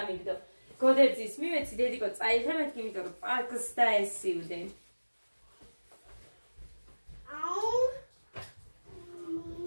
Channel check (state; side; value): inverted; both; correlation -1.00